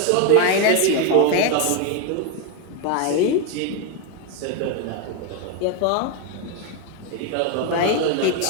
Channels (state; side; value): different; both; correlation 0.01